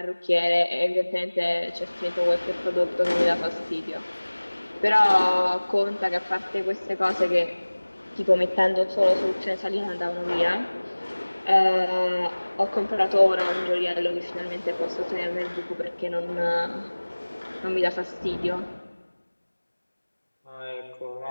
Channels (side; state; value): both; inverted; correlation -1.00